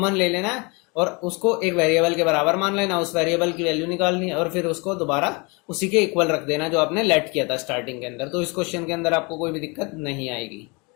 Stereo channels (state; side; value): quieter; right; 29.2 dB